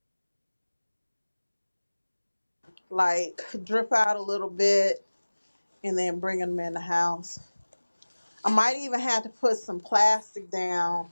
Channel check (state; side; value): inverted; both; correlation -1.00